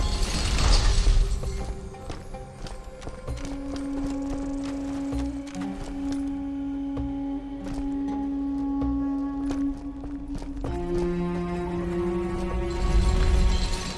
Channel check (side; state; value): both; identical; correlation 1.00